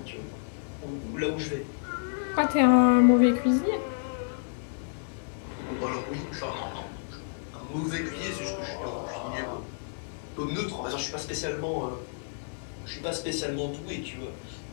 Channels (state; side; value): silent; right; digital silence